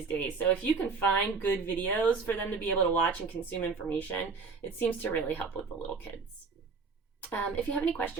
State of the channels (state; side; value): quieter; left; 4.8 dB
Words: days. So if you can find good videos for them to be able to watch and consume information, it seems to really help with the little kids. If you have any